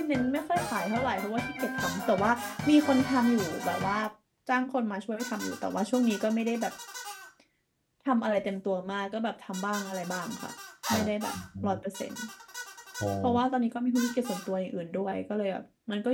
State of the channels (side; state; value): both; identical; correlation 1.00